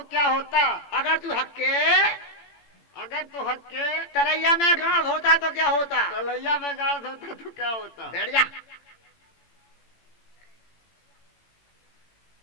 क्या होता? अगर तू हक्के अगर तो हक के तरैया में गांव होता तो क्या होता। तलैया में गाड़ होता तो क्या होता? बैठ जा।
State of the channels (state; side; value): late; right; 18 ms